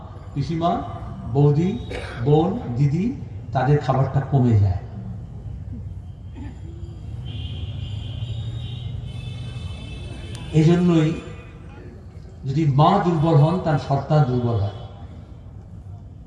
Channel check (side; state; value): both; identical; correlation 1.00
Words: পিসিমা, বৌদি, বোন, দিদি, তাদের খাবারটা কমে যায়। এই জন্যই যদি মা দুর্বল হন, তার সন্তান দুর্বল হয়।